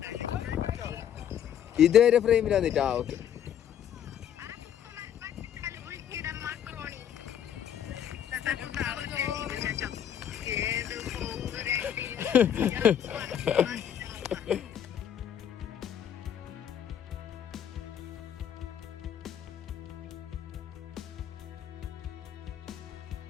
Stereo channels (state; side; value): quieter; right; 9.5 dB